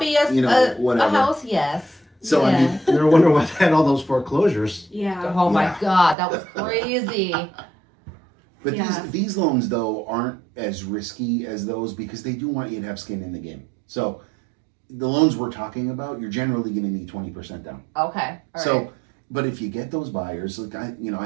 you know, a whatever. house? Yes. So, I Yeah. mean, No wonder why they had all those foreclosures. yeah. Oh my Yeah. God, that was crazy. But Yeah. these loans though aren't as risky as those because they do want you to have skin in the game. So the loans we're talking about, you're generally going to need 20% down. Okay. All So, right. but if you get those buyers, like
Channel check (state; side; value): drops out; left; at 6.2 s